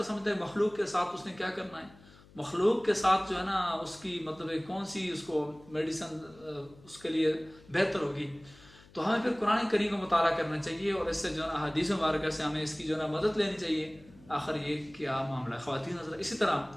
समझता है मखलूक के साथ उसने क्या करना है, मखलूक के साथ जो है ना उसकी मतलब है कौन सी उसको मेडिसिन उसके लिए बेहतर होगी। तो हमें फिर कुरान करीम का मुताला करना चाहिए और इससे जो है ना हदीस मुबारक से हमें इसकी जो है ना मदद लेनी चाहिए। आखिर ये क्या मामला है ख़वातीन हज़रात। इसी तरह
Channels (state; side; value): noise; left; hum, 24 dB below the sound